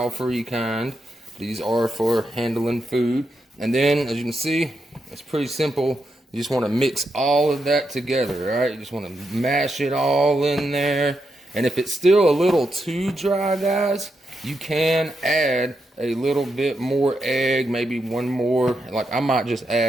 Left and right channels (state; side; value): normal; both; correlation 0.84